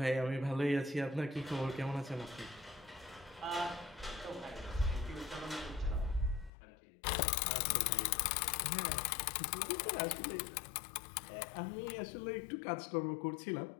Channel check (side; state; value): right; drops out; at 6.5 s